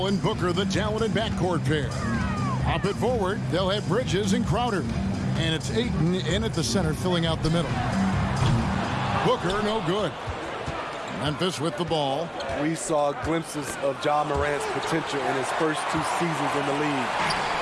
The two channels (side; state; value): both; identical; correlation 1.00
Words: and Booker, the talented backcourt pair. Up at forward, they'll have Bridges and Crowder. And it's Ayton in at the center, filling out the middle. Booker, no good. Memphis with the ball. We saw glimpses of Ja Morant's potential in his first 2 seasons in the league.